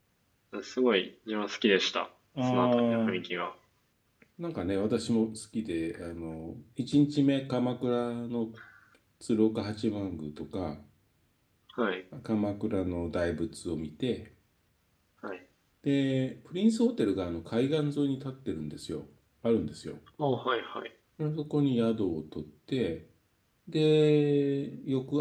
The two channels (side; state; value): both; identical; correlation 1.00